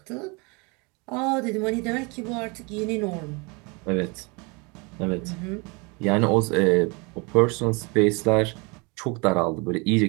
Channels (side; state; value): left; quieter; 29.4 dB